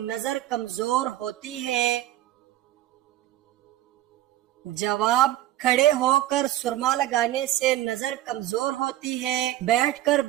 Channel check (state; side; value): quieter; left; 14.2 dB